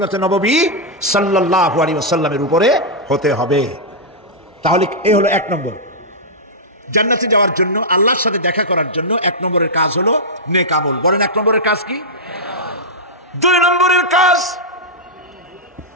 নববী সাল্লাল্লাহু আলাইহি ওয়াসাল্লামের উপরে হতে হবে। তাহলে এই হলো এক নম্বর। জান্নাতে যাওয়ার জন্য, আল্লাহর সাথে দেখা করার জন্য এক নম্বরের কাজ হলো নেক আমল। বলেন এক নম্বরের কাজ কি? দুই নম্বরের কাজ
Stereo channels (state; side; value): normal; both; correlation -0.09